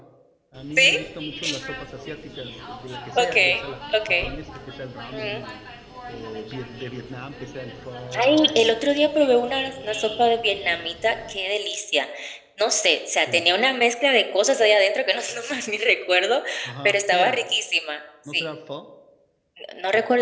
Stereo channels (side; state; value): both; identical; correlation 1.00